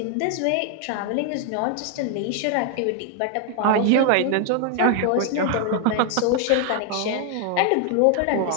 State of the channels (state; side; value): different; both; correlation 0.00